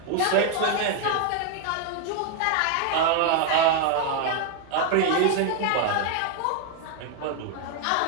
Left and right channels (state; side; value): different; both; correlation 0.00